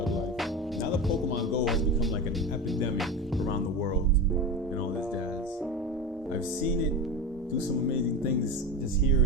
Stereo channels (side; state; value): both; normal; correlation 0.24